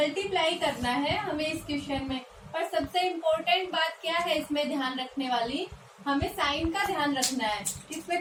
करना है हमें इस क्वेश्चन में। और सबसे इम्पोर्टेंट बात क्या है इसमें ध्यान रखने वाली? हमें साइन का ध्यान रखना है,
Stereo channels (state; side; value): identical; both; correlation 1.00